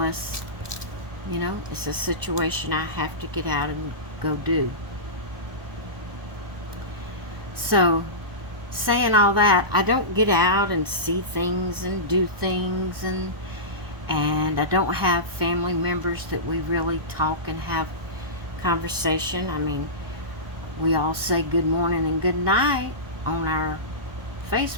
you know, it's a situation I have to get out and go do. So, saying all that, I don't get out and see things and do things, and I don't have family members that we really talk and have conversation. I mean, we all say good morning and good night on our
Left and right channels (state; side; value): late; left; 1.4 ms